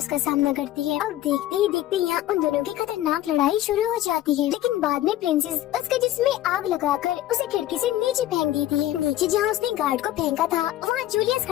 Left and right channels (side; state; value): right; quieter; 14.0 dB